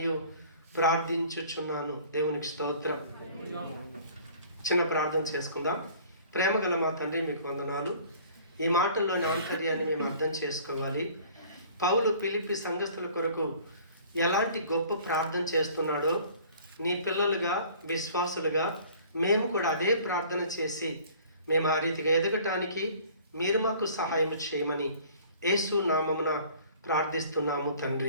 ప్రార్థించుచున్నాను. దేవునికి స్తోత్రం. చిన్న ప్రార్థన చేసుకుందాం. ప్రేమగల మా తండ్రి, మీకు వందనాలు. ఈ మాటల్లోని ఆంతర్యాన్ని మేము అర్థం చేసుకోవాలి. పౌలు ఫిలిప్పీ సంఘస్థుల కొరకు ఎలాంటి గొప్ప ప్రార్థన చేస్తున్నాడో, నీ పిల్లలుగా విశ్వాసులుగా మేము కూడా అదే ప్రార్థన చేసి మేము ఆ రీతిగా ఎదగటానికి మీరు మాకు సహాయం చేయమని యేసు నామమున ప్రార్థిస్తున్నాము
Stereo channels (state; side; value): inverted; both; correlation -0.50